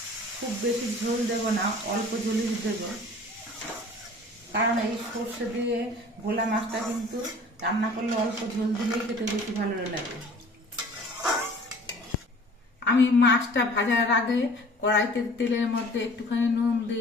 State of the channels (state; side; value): normal; both; correlation 0.48